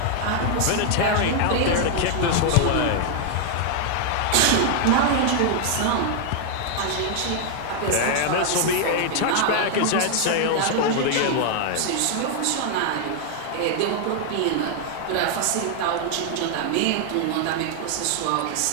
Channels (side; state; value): both; different; correlation 0.00